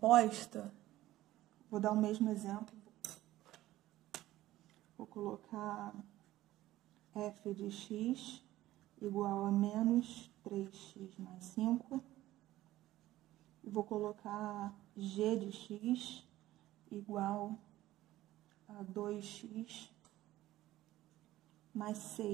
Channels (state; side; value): quieter; left; 15.4 dB